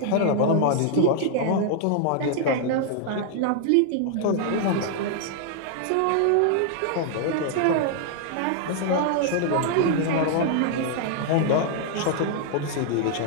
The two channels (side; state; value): both; different; correlation 0.00